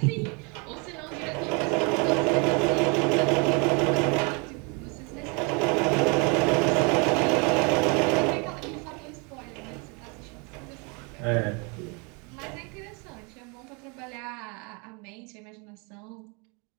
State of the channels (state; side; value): quieter; left; 32.4 dB